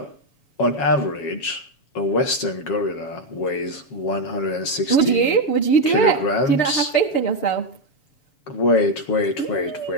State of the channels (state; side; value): late; right; 7.4 ms